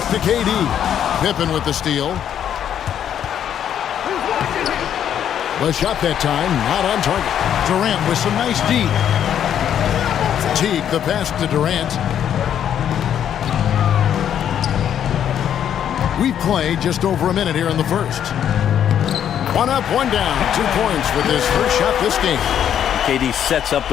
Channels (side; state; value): right; quieter; 9.6 dB